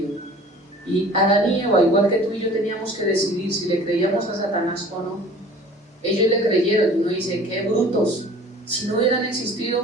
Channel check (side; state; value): both; normal; correlation 0.47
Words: Y Adán y Eva, igual que tú y yo, teníamos que decidir si le creíamos a Satanás o no. Ellos le creyeron, y uno dice, qué brutos. Si no hubieran